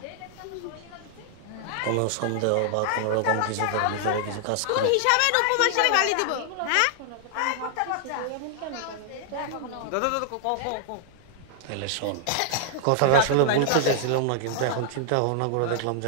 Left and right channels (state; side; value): different; both; correlation 0.00